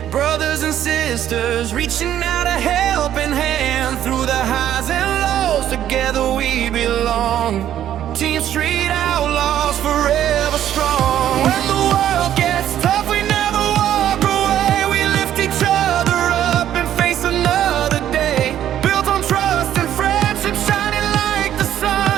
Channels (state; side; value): quieter; left; 11.2 dB